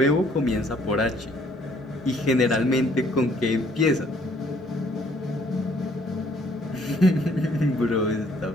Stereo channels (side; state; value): both; normal; correlation 0.63